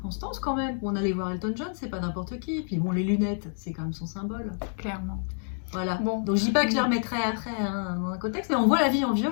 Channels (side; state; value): right; silent; 59 dB below the other